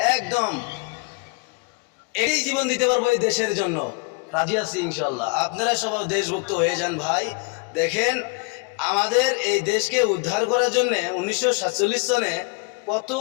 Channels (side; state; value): right; quieter; 29.4 dB